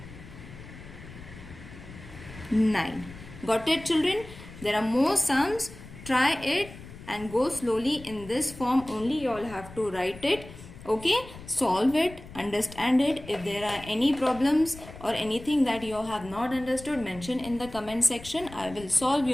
9. Got it, children? There are more sums. Try it and go slowly in this form only. You all have to write it. Okay, solve it, understand it. If there are any problems or anything that you have not understood, mention in the comment section. I will solve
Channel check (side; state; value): left; noise; rumble, 16 dB below the sound